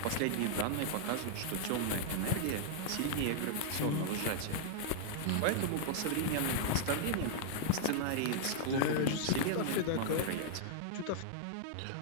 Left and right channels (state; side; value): different; both; correlation -0.01